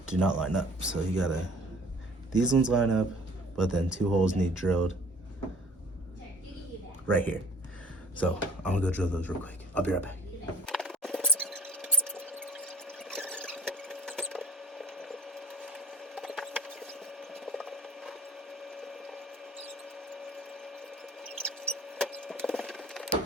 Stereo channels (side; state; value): both; normal; correlation 0.50